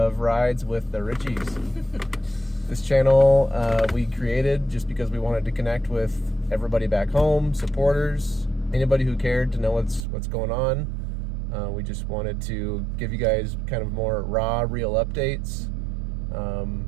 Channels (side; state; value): left; drops out; at 10.1 s